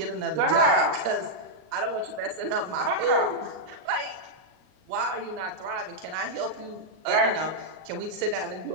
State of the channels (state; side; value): late; left; 38 ms